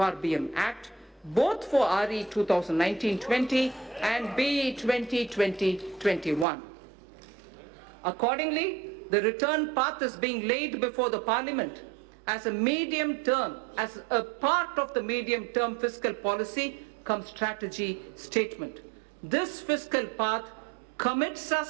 Act, both for RE 2019-20 and BE 2020-21. Accordingly, the return path is being laid before the Parliament as a part of the medium-term fiscal policy cum strategy statement. This fiscal path commits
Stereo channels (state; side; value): drops out; left; at 6.5 s